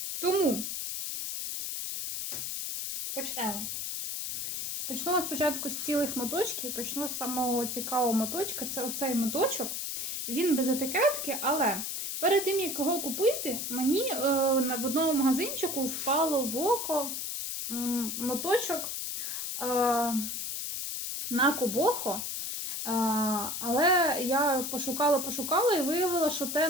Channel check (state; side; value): noise; left; hiss, 3 dB below the sound